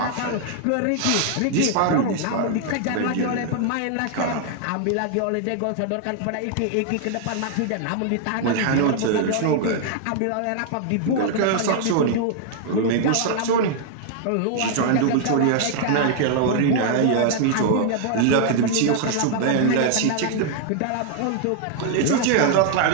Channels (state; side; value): different; both; correlation 0.00